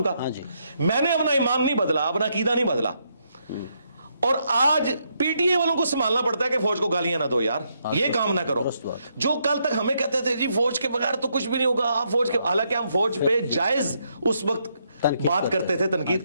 کا, میں نے اپنا ایمان نہیں بدلا, اپنا عقیدہ نہیں بدلا. اور آج پی ٹی اے والوں کو سنبھالنا پڑتا ہے کہ فوج کو گالیاں نہ دو یار, یہ کام نہ کرو. جو کل تک ہمیں کہتے تھے جی فوج کے بغیر تو کچھ بھی نہیں ہوگا, آپ فوج کے, حالانکہ ہم فوج پہ جائز اس وقت بات کرتے تھے, تنقید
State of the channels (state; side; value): inverted; both; correlation -0.77